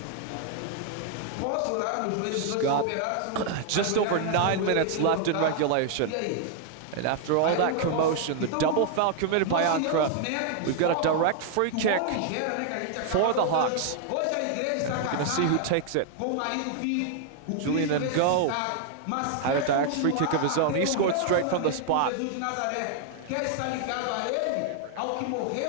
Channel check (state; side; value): different; both; correlation 0.00